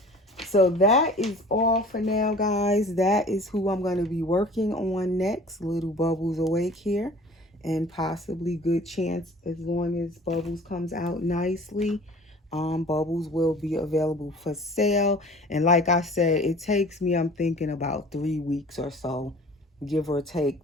So that is all for now, guys. That is who I'm going to be working on next. Little Bubbles Awake here. And possibly good chance, as long as Bubbles comes out nicely, Bubbles will be available for sale. And like I said, it takes me, I'm thinking about 3 weeks or so, give or take,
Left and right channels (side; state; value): both; normal; correlation 0.46